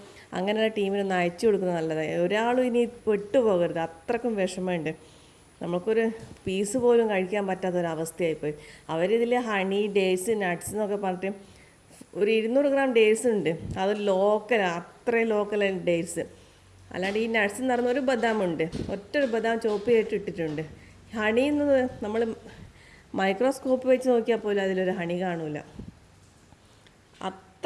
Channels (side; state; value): both; identical; correlation 1.00